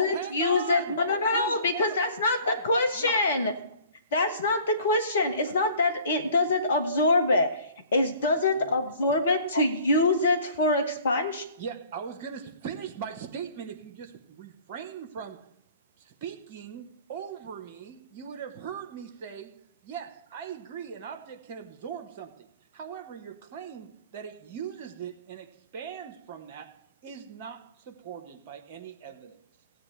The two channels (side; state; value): both; inverted; correlation -0.51